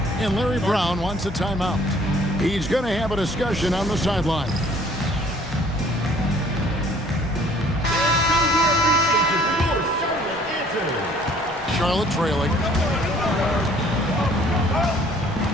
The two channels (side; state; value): both; normal; correlation 0.57